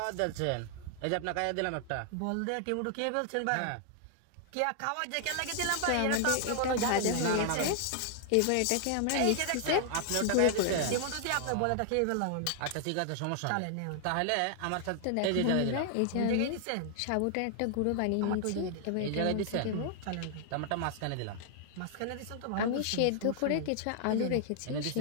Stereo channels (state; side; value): different; both; correlation 0.00